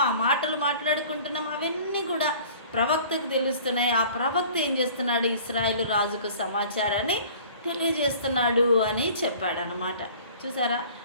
ఆ మాటలు మాట్లాడుకుంటున్నామో, అవన్నీ కూడా ప్రవక్తకు తెలుస్తున్నాయి. ఆ ప్రవక్త ఏం చేస్తున్నాడు? ఇశ్రాయేలు రాజుకు సమాచారాన్ని తెలియజేస్తున్నాడు అని చెప్పాడనమాట. చూసారా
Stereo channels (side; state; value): both; inverted; correlation -0.47